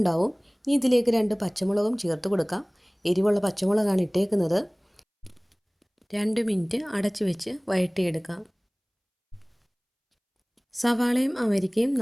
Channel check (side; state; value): both; identical; correlation 1.00